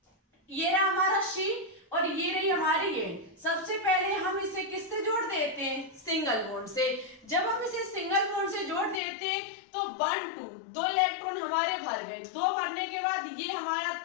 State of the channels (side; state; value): right; drops out; at 9.0 s